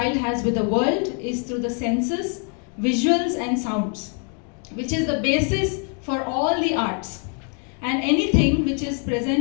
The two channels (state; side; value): quieter; right; 39.9 dB